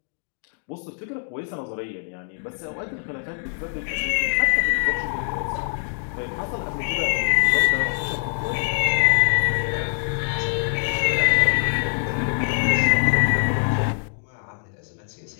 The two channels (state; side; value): silent; right; 61 dB below the other